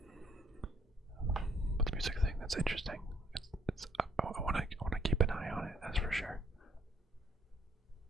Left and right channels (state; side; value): normal; both; correlation 0.65